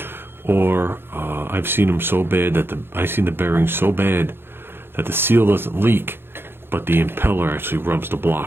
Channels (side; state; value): left; late; 0.11 ms